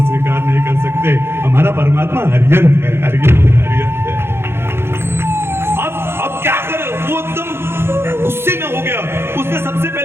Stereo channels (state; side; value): late; left; 0.12 ms